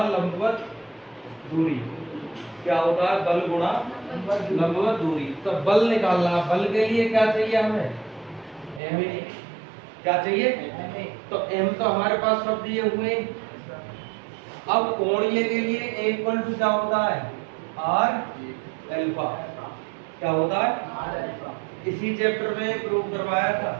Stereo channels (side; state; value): left; drops out; at 8.8 s